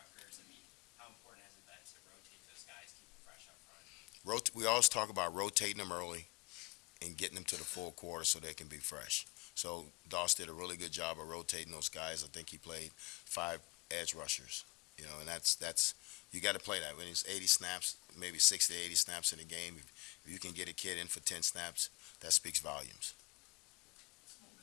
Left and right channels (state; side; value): quieter; right; 25.8 dB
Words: I mean, how important has it been to rotate those guys, keep them fresh up front? We always talk about rotating them early and getting them to the full quarter so they can be fresh. So Doss did a really good job of rotating those guys. I think he played 5 edge rushers. And that's you got to play that when it's 80 snaps, maybe 60 to 80 snaps in a game. If you can get a kid in for 10 snaps, that speaks volumes. What's the